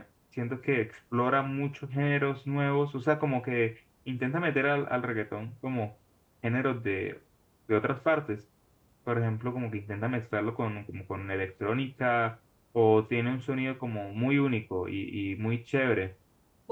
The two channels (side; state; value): both; identical; correlation 1.00